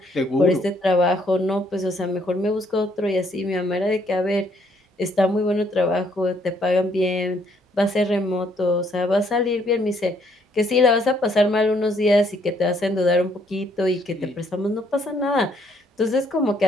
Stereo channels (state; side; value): normal; both; correlation 0.68